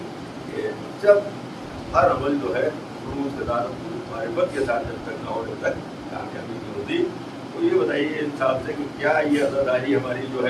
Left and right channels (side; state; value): both; identical; correlation 1.00